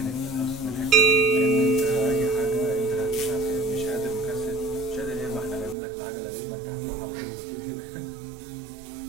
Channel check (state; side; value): drops out; left; at 5.8 s